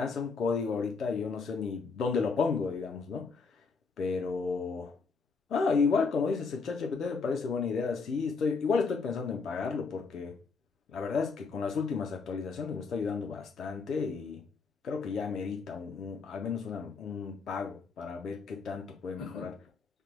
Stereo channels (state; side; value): quieter; right; 4.8 dB